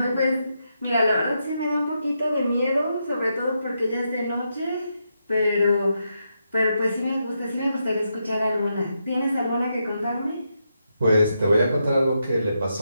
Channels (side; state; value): both; inverted; correlation -0.83